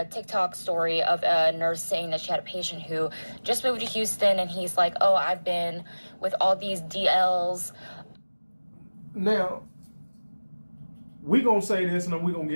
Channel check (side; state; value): both; inverted; correlation -1.00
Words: TikTok story of a nurse saying that she had a patient who just moved to Houston, and he's like, oh, I've been with all these DLs. Now, we gonna say this, and then we gonna